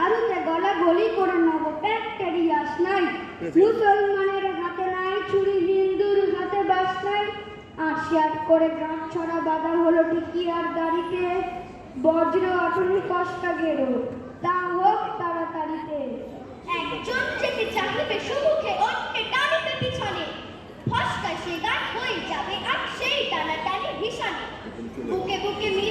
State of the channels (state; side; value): identical; both; correlation 1.00